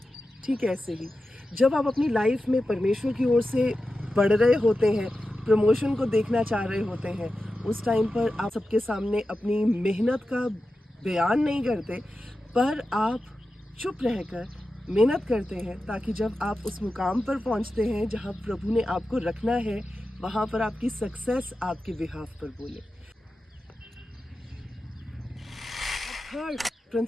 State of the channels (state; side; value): normal; both; correlation 0.92